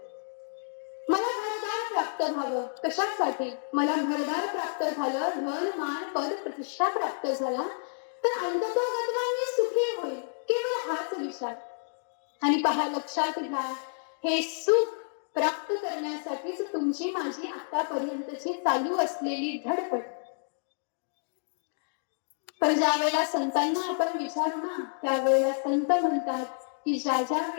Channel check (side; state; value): right; silent; digital silence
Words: मला घरदार प्राप्त व्हावं. कशासाठी? मला घरदार प्राप्त झालं, धन मान पद प्रतिष्ठा प्राप्त झाला तर अंततोगत्वा मी सुखी होईल. केवळ हाच विचार. आणि पहा, लक्षात घ्या, हे सुख प्राप्त करण्यासाठीच तुमची माझी आतापर्यंतची चालू असलेली धडपड. पण ज्या वेळेला संतांना आपण विचारू ना, त्यावेळेला संत म्हणतात की ज्या ज्या